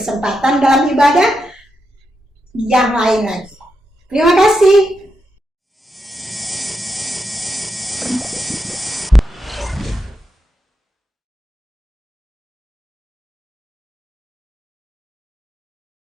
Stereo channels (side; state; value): both; normal; correlation 0.85